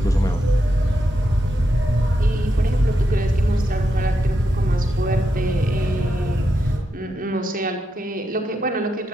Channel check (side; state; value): both; normal; correlation 0.84